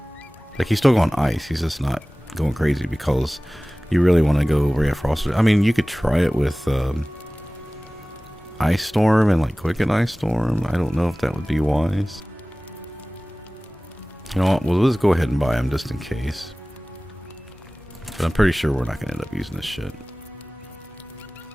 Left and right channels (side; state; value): both; normal; correlation 0.98